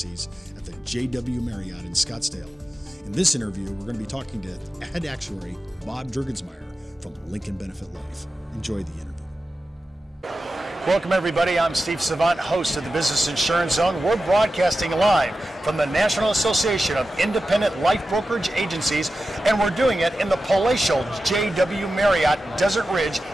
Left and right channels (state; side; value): normal; both; correlation 0.93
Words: at the JW Marriott in Scottsdale. In this interview, we're going to be talking to head actuary Bob Jurgensmeier from Lincoln Benefit Life. Enjoy the interview. Welcome everybody, I'm Steve Savant, host of the Business Insurance Zone. We're broadcasting live from the National Association of Independent Life Brokerage Agencies, and we're doing it in the palatial JW Marriott, Desert Ridge